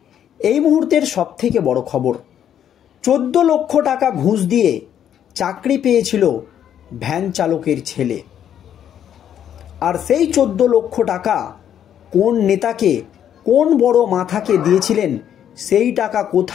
এই মুহূর্তের সবথেকে বড় খবর, 14 লক্ষ টাকা ঘুষ দিয়ে চাকরি পেয়েছিল ভ্যান চালকের ছেলে। আর সেই 14 লক্ষ টাকা কোন নেতাকে, কোন বড় মাথাকে দিয়েছিলেন, সেই টাকা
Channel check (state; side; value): quieter; right; 9.8 dB